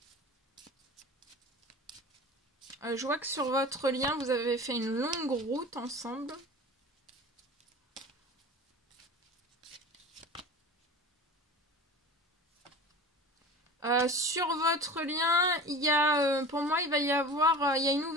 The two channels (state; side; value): normal; both; correlation 0.36